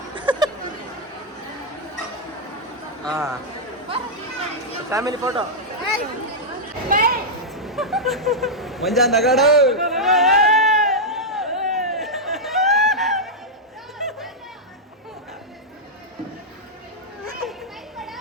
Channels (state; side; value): normal; both; correlation -0.06